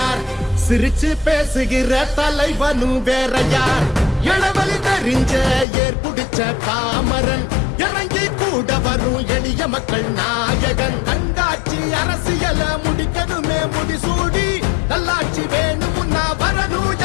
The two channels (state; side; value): drops out; right; at 5.7 s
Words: சிரிச்சு பேசுகிற தலைவனு வேறையார். இளவலி தெரிஞ்ச ஏற்புடிச்ச பாமரன், இறங்கி கூட வரும் எளிய மக்கள் நாயகன். கண்காட்சி அரசியல முடிக்கணுமே முடிசூடி, நல்லாட்சி வேணும்னா வரணும்